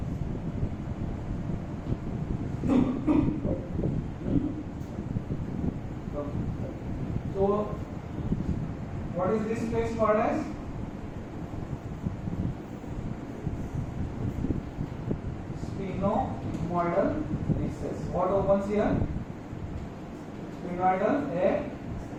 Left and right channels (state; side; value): identical; both; correlation 1.00